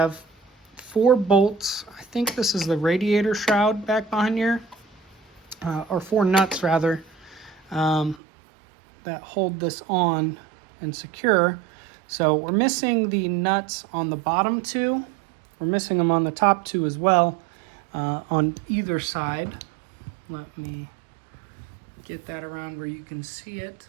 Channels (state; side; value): drops out; left; at 8.2 s